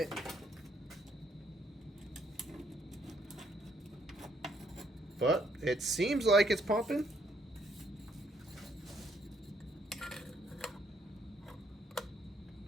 But it seems like it's pumping.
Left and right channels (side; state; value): both; normal; correlation 0.71